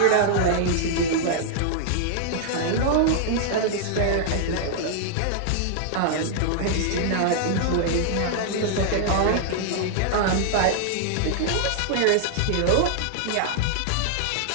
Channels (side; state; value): both; different; correlation -0.01